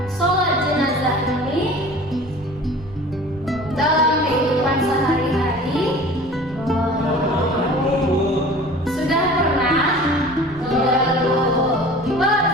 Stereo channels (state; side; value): noise; right; rumble, 20 dB below the sound